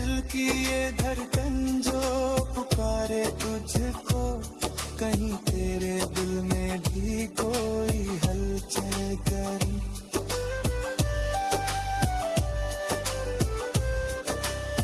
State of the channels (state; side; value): identical; both; correlation 1.00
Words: की ये धड़कन जो पुकारे तुझको। कहीं तेरे दिल में भी कोई हलचल करे।